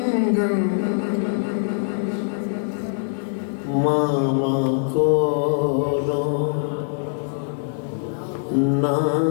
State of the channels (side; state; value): right; silent; 64 dB below the other